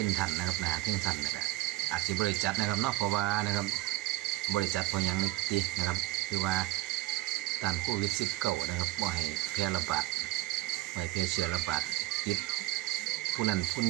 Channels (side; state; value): left; quieter; 18.8 dB